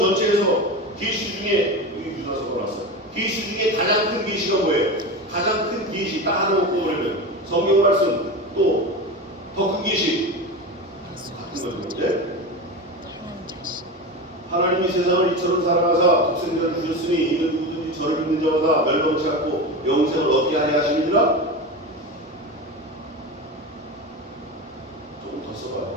계시 중에 여기 유다서 나왔어요. 계시 중에 가장 큰 계시가 뭐예요? 가장 큰 계시 딱 하나 놓고 보면 성경 말씀 또 더 큰 계시 같은 거죠. 네? 하나님이 세상을 이처럼 사랑하사 독생자를 주셨으니 이는 누구든지 저를 믿는 자마다 멸망치 않고 영생을 얻게 하려 하심이니라. 조금 더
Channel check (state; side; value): normal; both; correlation 0.24